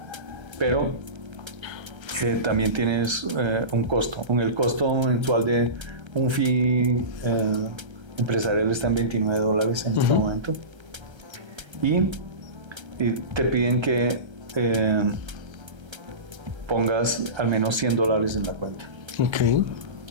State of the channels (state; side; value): late; left; 1.3 ms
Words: Pero también tienes un costo. El costo mensual de un fee empresarial está en $29 en este momento. Y y te piden que pongas al menos $100 en la cuenta. Ok.